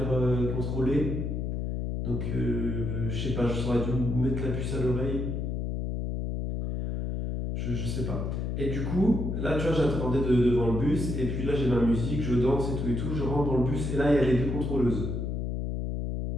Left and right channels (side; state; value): left; noise; hum, 2 dB below the sound